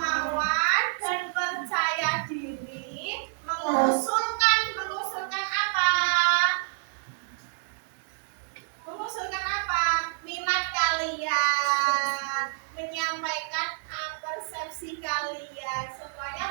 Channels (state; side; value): silent; left; 59 dB below the other